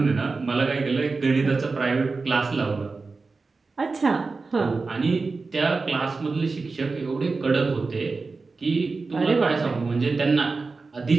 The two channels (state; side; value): quieter; left; 4.1 dB